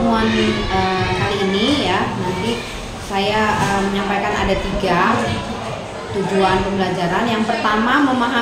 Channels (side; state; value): both; identical; correlation 1.00